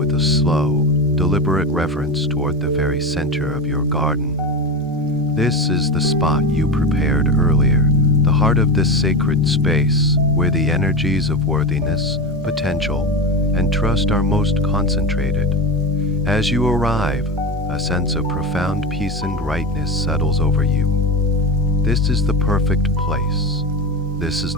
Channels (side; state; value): both; normal; correlation 0.20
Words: a slow, deliberate reverence toward the very center of your garden. This is the spot you prepared earlier, the heart of this sacred space, where the energies of worthiness, potential, and trust are most concentrated. As you arrive, a sense of profound peace and rightness settles over you. This is the perfect place. This is